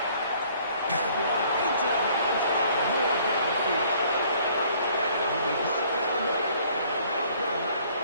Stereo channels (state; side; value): inverted; both; correlation -0.59